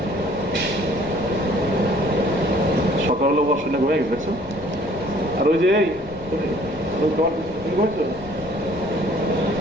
সকাল হলো বস শুনে ঘুমিয়ে গেছে, দেখছো? আর ওই যে এই তুমি ঘুমাইছো?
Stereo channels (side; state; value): left; noise; rumble, 21 dB below the sound